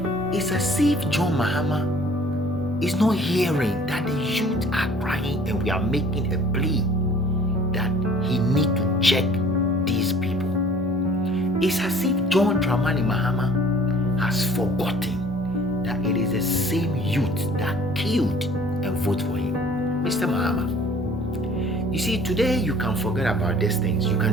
It's as if John Mahama is not hearing that the youth are crying, and we are making a plea that he need to check these people. It's as if John Dramani Mahama has forgotten that it is the same youth that killed and voted for him. Mr. Mahama, you see, today you can forget about these things. You can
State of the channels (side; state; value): both; normal; correlation 0.52